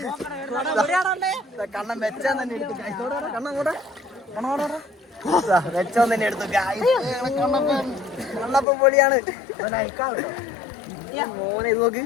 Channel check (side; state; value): right; drops out; at 8.7 s